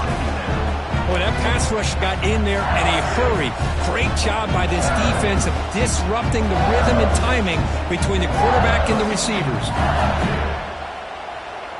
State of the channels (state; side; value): identical; both; correlation 1.00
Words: Well, that pass rush got in there in a hurry. Great job by this defense of disrupting the rhythm and timing between the quarterback and the receivers.